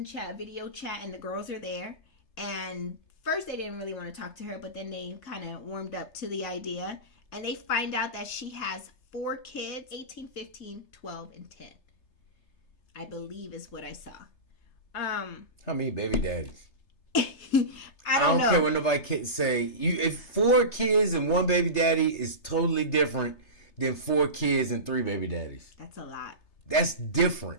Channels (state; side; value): late; right; 3.3 ms